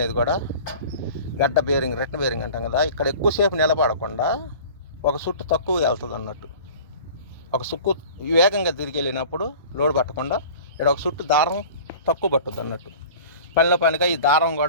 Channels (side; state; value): both; inverted; correlation -0.42